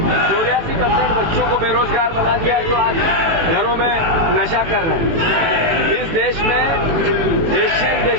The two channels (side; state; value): left; late; 18 ms